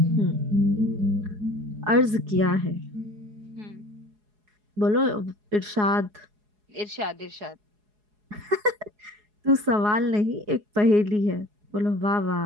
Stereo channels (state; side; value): late; left; 4.8 ms